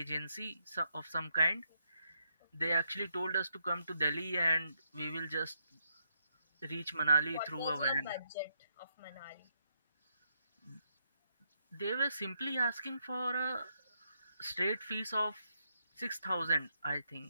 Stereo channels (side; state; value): both; inverted; correlation -0.77